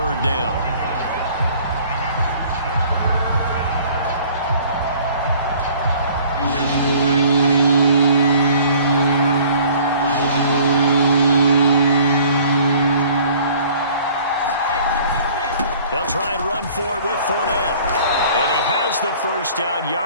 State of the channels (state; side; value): inverted; both; correlation -0.52